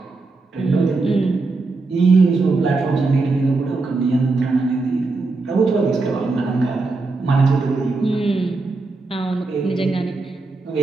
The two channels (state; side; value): quieter; left; 3.6 dB